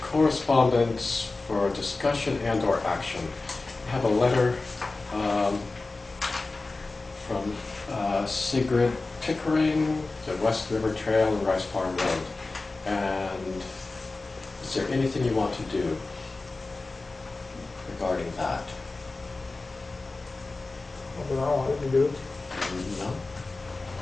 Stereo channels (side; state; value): right; quieter; 3.4 dB